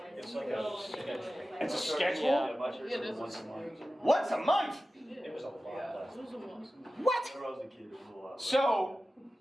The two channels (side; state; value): both; normal; correlation 0.94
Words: It's like a schedule. It's a schedule? Yeah, this Once a month. Once a month? It was a lot less. What? When I was a kid, it was a lot.